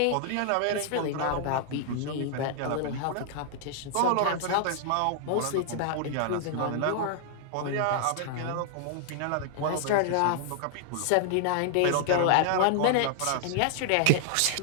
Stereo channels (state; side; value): different; both; correlation -0.01